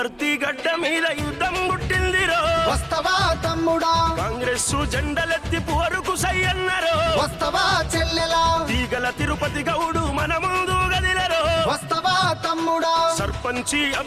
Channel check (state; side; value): identical; both; correlation 1.00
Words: గడ్డ మీద యుద్ధం గుట్టిందిరో, వస్తవా తమ్ముడా? కాంగ్రెస్ జెండలెత్తి పోరుకు సయ్యన్నరో, వస్తవా చెల్లెలా? తీగల తిరుపతి గౌడు మన ముందు గదిలేరో, వస్తవా తమ్ముడా? సర్పంచి